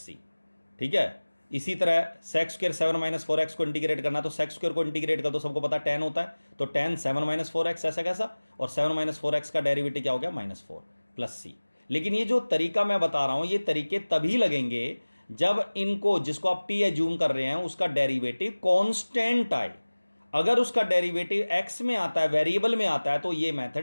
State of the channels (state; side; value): inverted; both; correlation -1.00